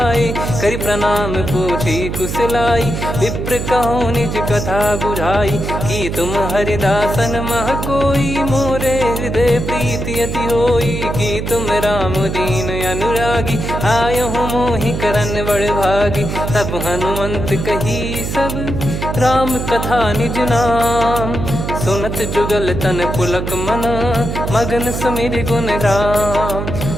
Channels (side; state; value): right; noise; hum, 4 dB below the sound